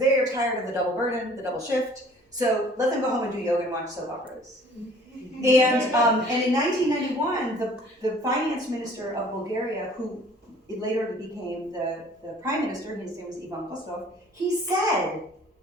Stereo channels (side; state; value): both; normal; correlation 0.52